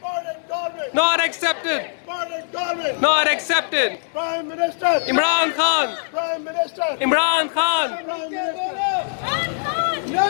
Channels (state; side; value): silent; right; digital silence